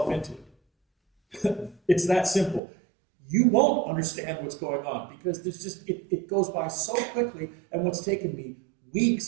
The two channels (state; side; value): drops out; left; at 2.6 s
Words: into it. It's that simple. You won't understand what's going on because there's just it goes by so quickly, and what's taken me